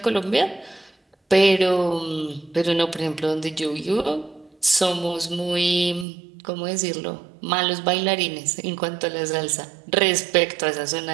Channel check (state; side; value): drops out; left; at 6.1 s